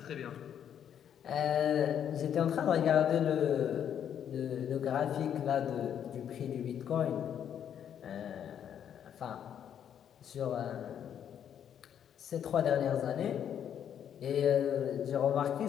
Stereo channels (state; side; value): quieter; right; 9.1 dB